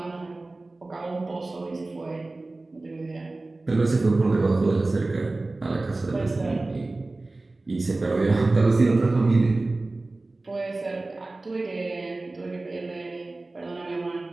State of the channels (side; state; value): left; quieter; 3.1 dB